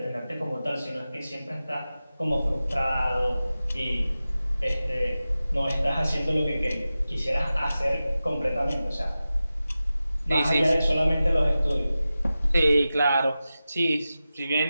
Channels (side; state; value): both; inverted; correlation -0.94